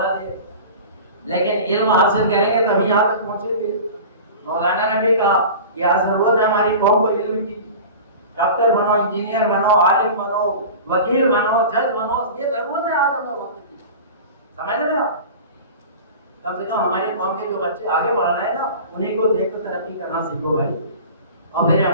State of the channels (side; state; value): both; inverted; correlation -0.36